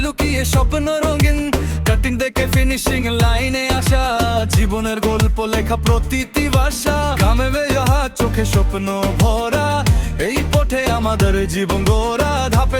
লুকিয়ে স্বপ্ন রঙিন। কাটিং দেখে ফিনিশিং লাইনে আসা, জীবনের গল্প লেখা প্রতিটি ভাষা। ঘামে বেজাহা চোখে স্বপ্ন ভরা, এই পথে আমাদের জীবন গড়া।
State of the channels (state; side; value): identical; both; correlation 1.00